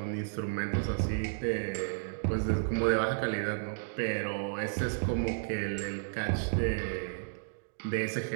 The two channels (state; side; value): silent; left; digital silence